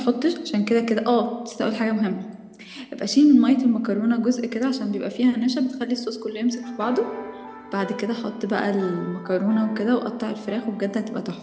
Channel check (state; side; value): identical; both; correlation 1.00